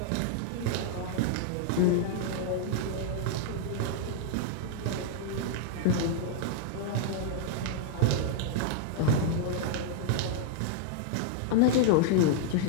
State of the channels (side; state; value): both; different; correlation -0.01